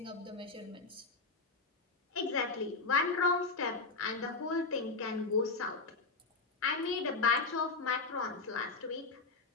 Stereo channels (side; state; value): right; quieter; 4.0 dB